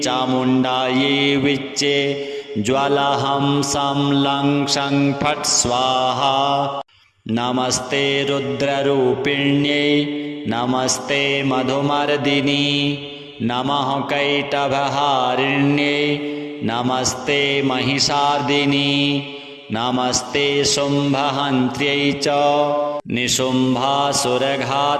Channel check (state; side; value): identical; both; correlation 1.00